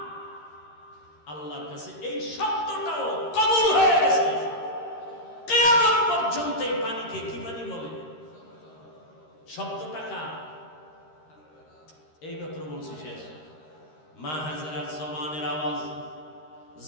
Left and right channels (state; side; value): late; right; 13 ms